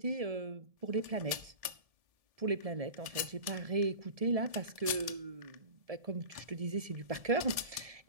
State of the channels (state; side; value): late; left; 1.7 ms